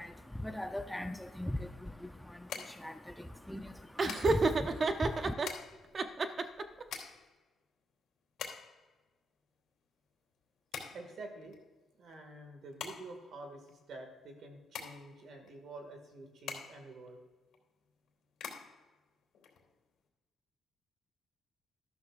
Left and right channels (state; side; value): normal; both; correlation 0.86